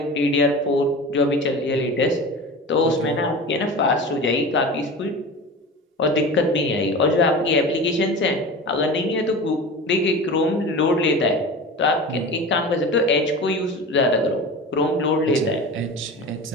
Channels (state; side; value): normal; both; correlation 0.32